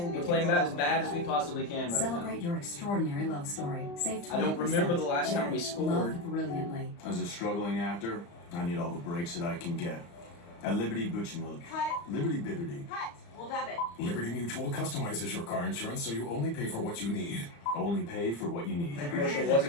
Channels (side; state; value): right; late; 35 ms